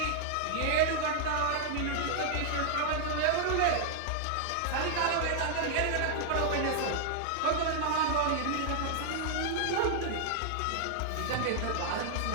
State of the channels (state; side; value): different; both; correlation -0.01